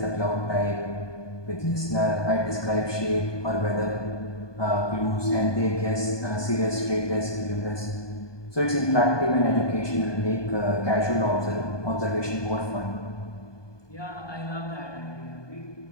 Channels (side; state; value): right; late; 1.2 ms